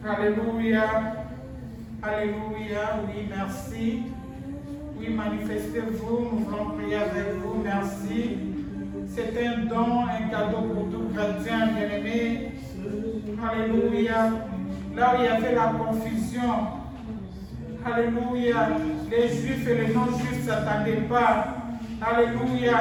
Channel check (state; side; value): identical; both; correlation 1.00